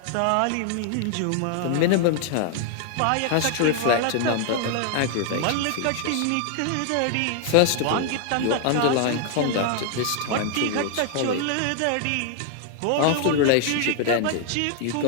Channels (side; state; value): both; different; correlation 0.00